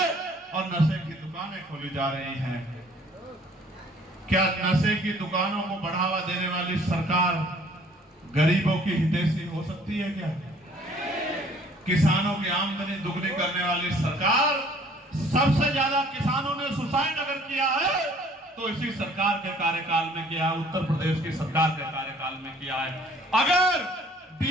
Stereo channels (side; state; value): both; normal; correlation 0.56